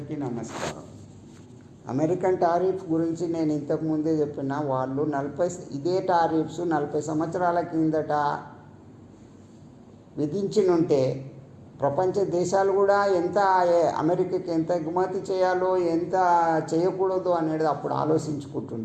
నమస్కారం. American tariff గురించి నేను ఇంతకుముందే చెప్పిన వాళ్ళు ఇదే టారిఫ్స్ 40 సంవత్సరాల కిందట విధించినుంటే ప్రపంచ దేశాలు కూడా ఎంత అమెరికాకి ఎంత ఎగుమతి చేయాలో ఎంత చేయకూడదు అనేది అప్పుడు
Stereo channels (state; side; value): identical; both; correlation 1.00